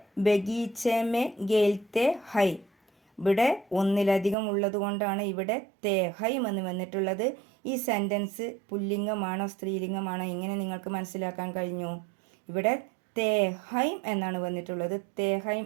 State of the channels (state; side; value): drops out; left; at 4.4 s